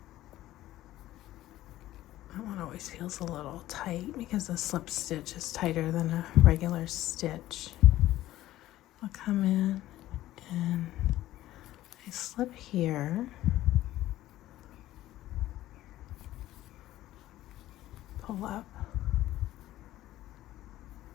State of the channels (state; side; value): quieter; right; 14.8 dB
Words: That one always feels a little tight because the slip stitch is tighter than a regular stitch. I'll come in and I slip here. Pull up.